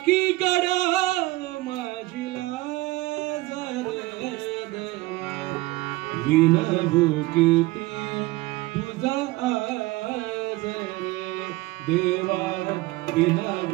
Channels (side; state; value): left; quieter; 19.9 dB